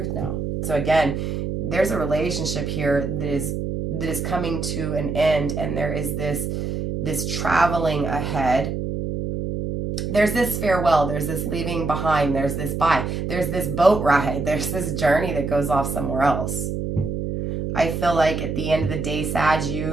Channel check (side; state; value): right; noise; hum, 3 dB below the sound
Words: now. So again, there's a relationship here that is coming to an end. And there is this traveling ahead. There's this farewell, there's this leaving behind, there's this bye, there's this boat ride, there's this journey that goes off somewhere else. I feel like at the end of the day, Sag,